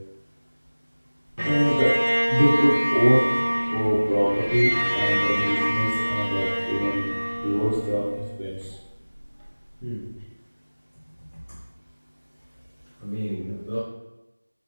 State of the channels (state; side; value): inverted; both; correlation -1.00